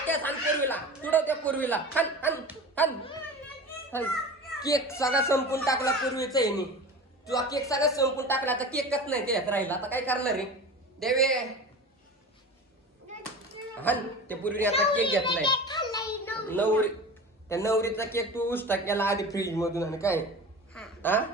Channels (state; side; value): normal; both; correlation 0.34